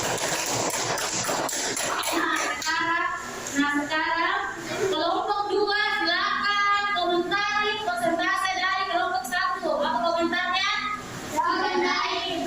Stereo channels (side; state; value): right; noise; rumble, 23 dB below the sound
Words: Nah sekarang kelompok 2 silakan komentari persentase dari kelompok 1. Apa komentarnya?